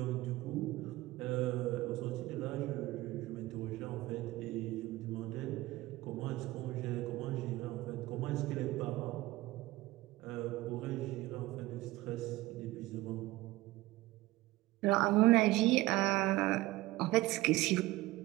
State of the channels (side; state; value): left; quieter; 18.5 dB